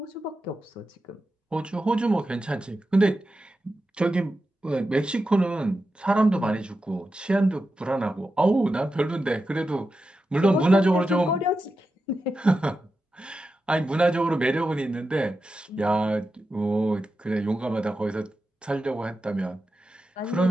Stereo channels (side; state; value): both; normal; correlation 0.90